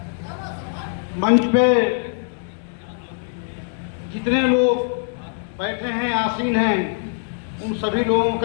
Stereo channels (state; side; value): silent; right; digital silence